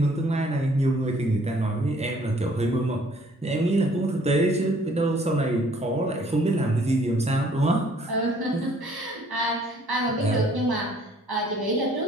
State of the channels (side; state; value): both; normal; correlation 0.59